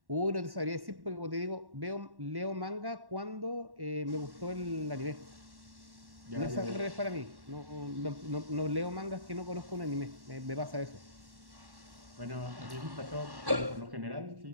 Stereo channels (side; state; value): left; late; 1.1 ms